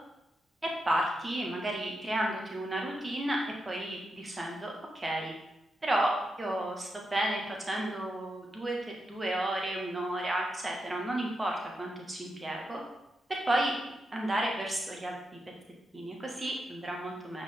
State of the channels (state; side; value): normal; both; correlation 0.85